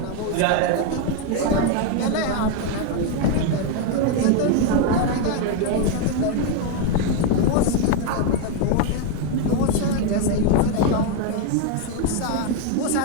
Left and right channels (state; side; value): different; both; correlation 0.01